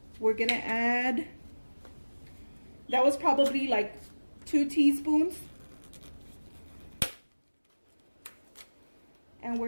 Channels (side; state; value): both; inverted; correlation -1.00